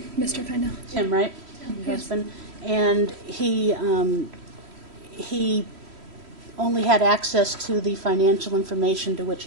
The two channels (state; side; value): late; left; 3.1 ms